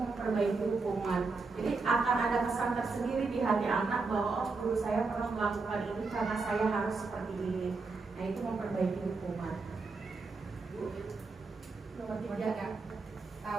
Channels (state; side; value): quieter; left; 4.1 dB